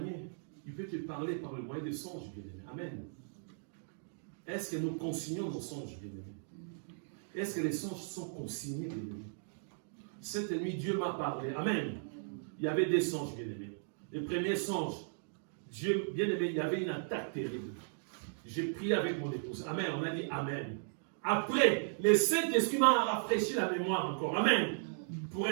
Il peut te parler par le moyen des songes, bien-aimé. Amen. Est-ce que nous consignons nos songes, bien-aimé? Est-ce que les songes sont consignés, bien-aimé? Cette nuit, Dieu m'a parlé. Amen. Il y avait des songes, bien-aimé. Le premier songe, Dieu, bien-aimé, il y avait une attaque terrible. J'ai prié avec mon épouse. Amen. On a dit Amen. Après, le Saint-Esprit m'a rafraîchi la mémoire encore. Amen. Pour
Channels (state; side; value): silent; left; digital silence